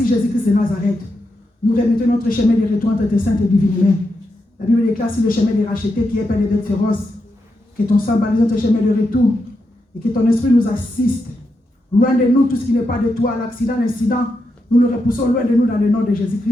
Jésus-Christ de Nazareth. Nous remettons notre chemin de retour entre tes saintes et divines mains. La Bible déclare sur le chemin des rachetés qui est plein de bêtes féroces. Que ton sang balise notre chemin de retour et que ton esprit nous assiste. Loin de nous tout ce qui n'est pas de toi, l'accident, l'incident, nous le repoussons loin de nous dans le nom de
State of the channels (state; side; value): normal; both; correlation 0.85